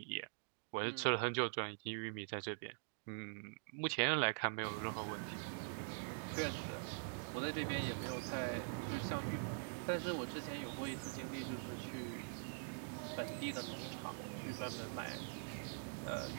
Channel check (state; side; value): silent; left; digital silence